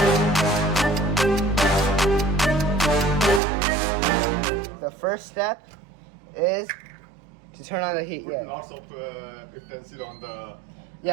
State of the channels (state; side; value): drops out; left; at 3.4 s